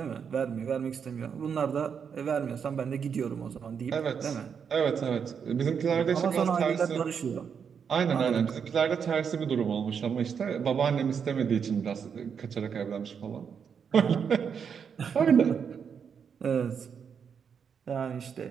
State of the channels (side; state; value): left; quieter; 6.9 dB